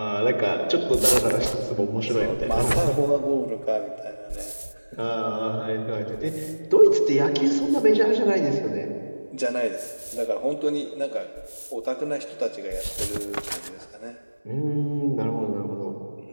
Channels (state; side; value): inverted; both; correlation -1.00